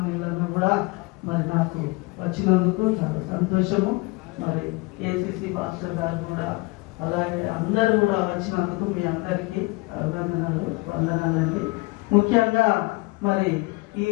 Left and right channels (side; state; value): right; quieter; 25.0 dB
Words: కూడా మరి నాకు వచ్చినందుకు చాలా సంతోషము. మరి ఏసీసీ పాస్టర్ గారు కూడా అలాగే అందరూ కూడా వచ్చినందుకు మీ అందరికీ అభినందనలు, వందనాలండి. ముఖ్యంగా మరి ఈ